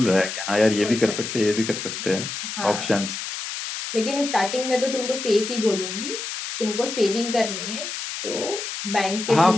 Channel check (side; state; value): left; noise; hiss, 6 dB below the sound